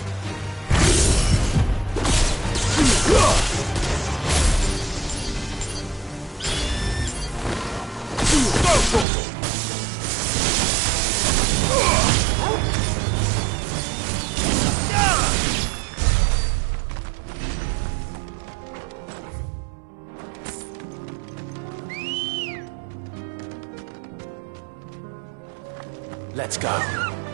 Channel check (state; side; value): drops out; left; at 9.1 s